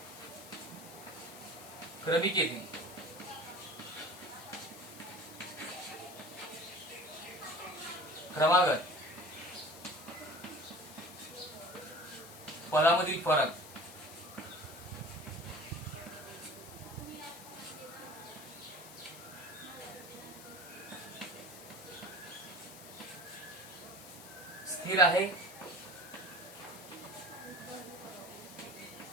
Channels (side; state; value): left; noise; hiss, 15 dB below the sound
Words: क्रमिकेतील क्रमागत पदामधील फरक स्थिर आहे.